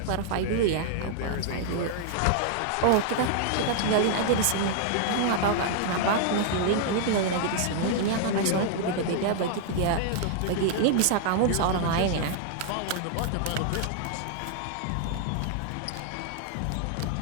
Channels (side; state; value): both; different; correlation 0.00